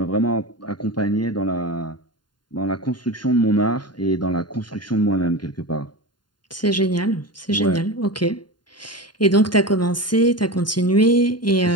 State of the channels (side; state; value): right; late; 0.71 ms